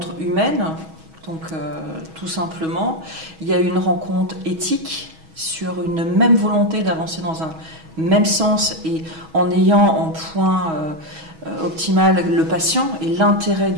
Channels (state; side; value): late; left; 6.2 ms